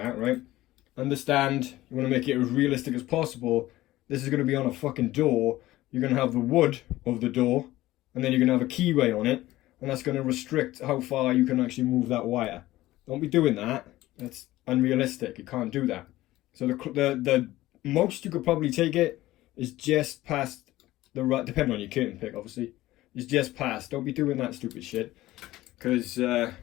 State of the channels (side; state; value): right; quieter; 16.6 dB